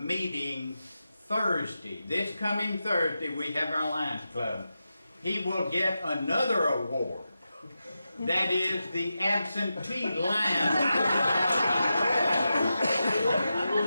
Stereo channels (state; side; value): inverted; both; correlation -0.90